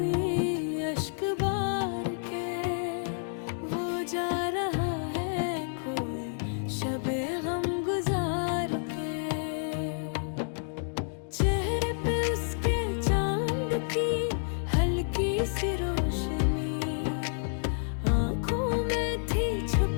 अश्क बार के, वो जा रहा है कोई शबे गम गुजार के। चेहरे पे उसके चांद की हल्की सी रोशनी, आंखों में थी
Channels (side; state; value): right; silent; digital silence